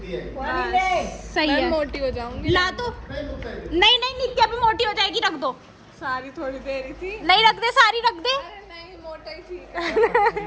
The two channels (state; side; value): identical; both; correlation 1.00